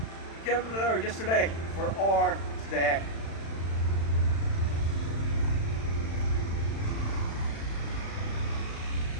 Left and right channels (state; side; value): late; right; 36 ms